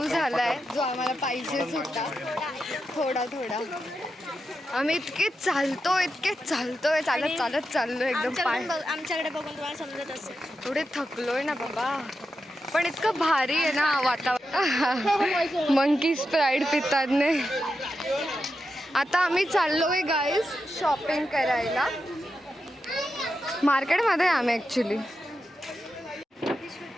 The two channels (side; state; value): both; normal; correlation 0.88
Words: झालाय जो आम्हाला पाहिजेच होता. थोडा आम्ही इतके चालतोय चालत चाललोय एकदम पाय. आमच्याकडे बघून तुम्हाला समजत असेल. थोडे थकलोय ना बाबा पण इतकं भारी आहे ना वातावरण. मंकी स्प्राईट पितात ने. आता आम्ही चाललोय गाईस शॉपिंग करायला मार्केटमध्ये. आम्ही ॲक्च्युली